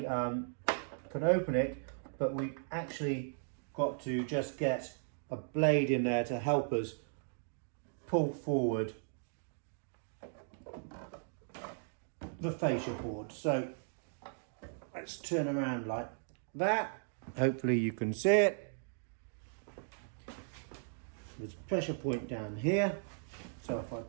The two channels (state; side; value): silent; left; digital silence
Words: can open it, but we actually got to just get a blade in there to help us pull forward the fascia board. So let's turn around like that. Hopefully you can see it. There's a pressure point down here. So if I